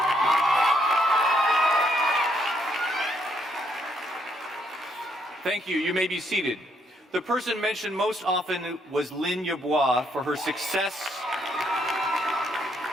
Thank you. You may be seated. The person mentioned most often was Lynn Yabois for her success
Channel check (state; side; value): normal; both; correlation 0.73